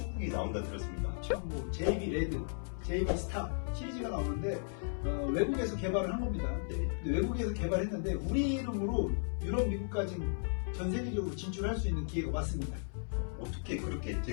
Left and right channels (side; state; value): right; silent; 54 dB below the other